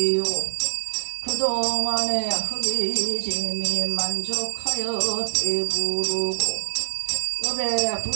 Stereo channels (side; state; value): left; silent; digital silence